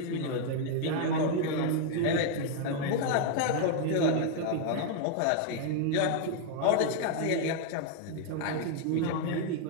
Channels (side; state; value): both; different; correlation 0.00